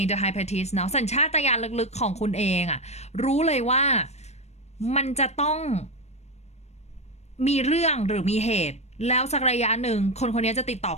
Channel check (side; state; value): right; late; 0.32 ms